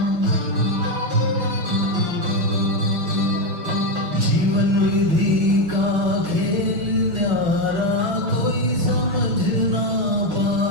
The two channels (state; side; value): late; left; 6.1 ms